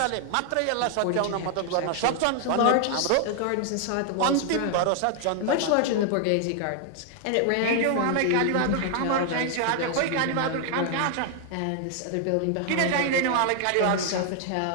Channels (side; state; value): both; different; correlation 0.00